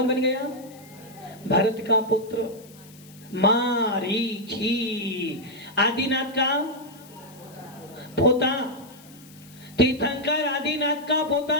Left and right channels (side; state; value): left; noise; hiss, 23 dB below the sound